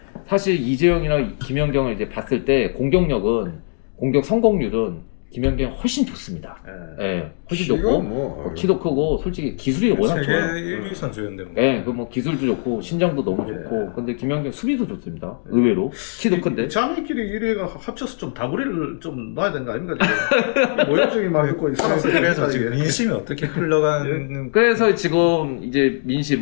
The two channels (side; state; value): right; silent; digital silence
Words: 사실 이재영이나 김연경을 이제 봤을 때 공격 성공률은 김연경이 훨씬 좋습니다. 훨씬 좋고 키도 크고 솔직히 기술이 워낙 좋아요. 세계 1위 선수였는데. 그 뭐 기술도 좋고 신장도 너무 좋고 근데 김연경 수비도 좋습니다. 의외로 키도 큰데. 자매끼리 1위가 합쳐서 좀 다구리를 좀 놔야 되는 거 아닙니까? 모욕적인 막 있고 그래서 지금 민심이 어떻게 흘러가는? 그래서 지금 이제